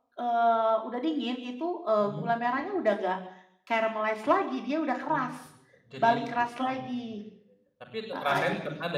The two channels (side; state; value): both; identical; correlation 1.00